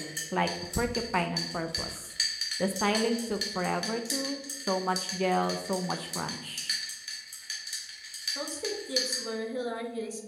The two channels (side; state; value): both; identical; correlation 1.00